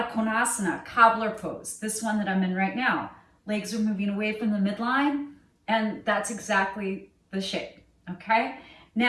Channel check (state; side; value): identical; both; correlation 1.00